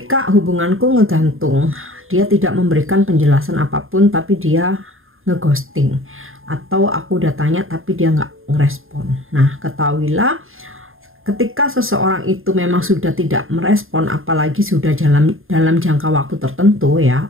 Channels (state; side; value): late; left; 0.60 ms